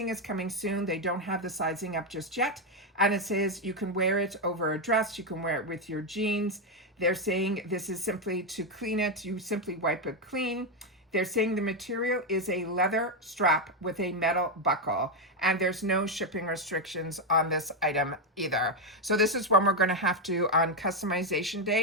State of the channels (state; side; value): normal; both; correlation 0.05